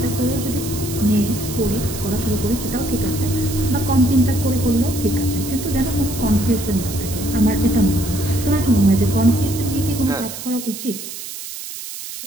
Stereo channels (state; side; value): noise; right; hiss, 10 dB below the sound